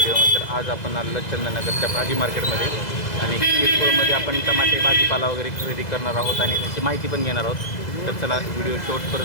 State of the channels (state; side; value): late; right; 2.0 ms